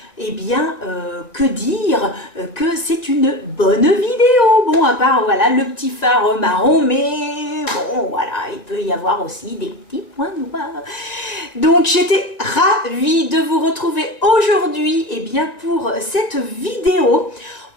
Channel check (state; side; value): late; right; 1.9 ms